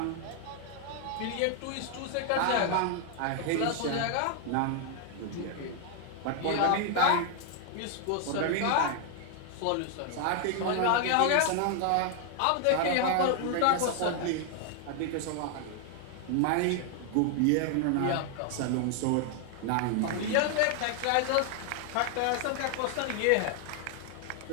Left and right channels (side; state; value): both; different; correlation 0.00